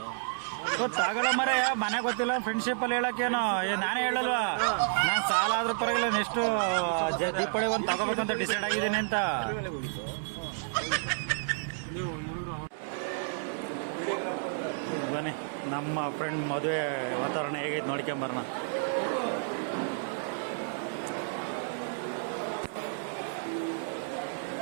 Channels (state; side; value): silent; left; digital silence